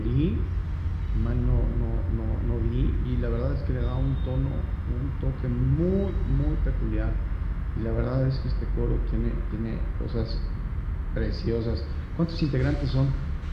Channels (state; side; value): identical; both; correlation 1.00